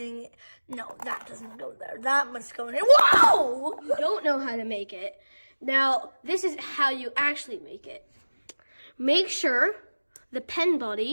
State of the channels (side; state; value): both; inverted; correlation -1.00